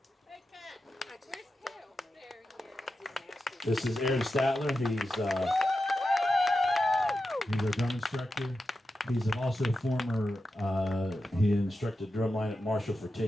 This is Aaron Statler. He's our drum instructor. He's also a former, he instructed drumline at Marshall for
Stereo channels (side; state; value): both; normal; correlation 0.90